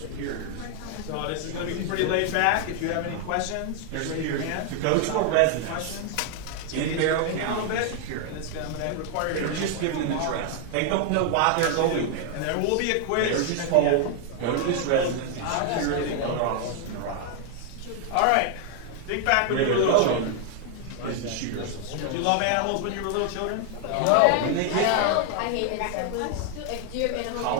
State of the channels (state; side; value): different; both; correlation 0.00